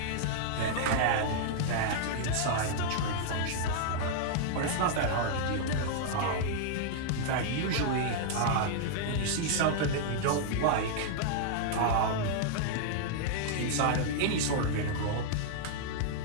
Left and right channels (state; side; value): different; both; correlation -0.01